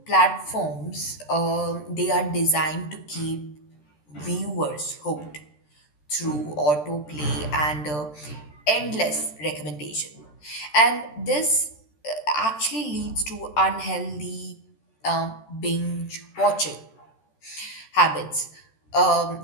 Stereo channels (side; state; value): right; late; 13 ms